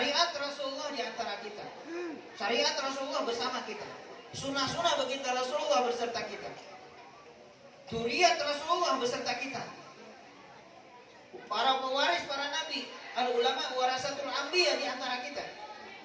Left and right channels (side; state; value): both; identical; correlation 1.00